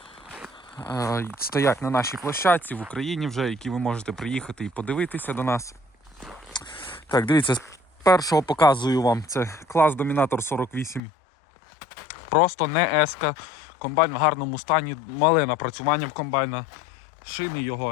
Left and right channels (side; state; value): right; drops out; at 11.0 s